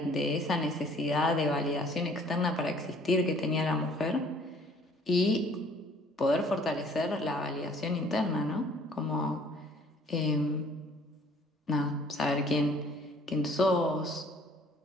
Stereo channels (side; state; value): both; normal; correlation 0.57